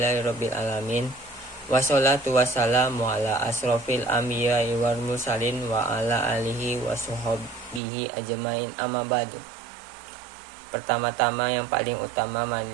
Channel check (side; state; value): left; drops out; at 7.8 s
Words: alamin. Wassalatu wassalamu ala asrofil anbiya'i wal mursalin wa ala alihi wa sahbihi ajmain, amma ba'du. Pertama-tama yang paling utama,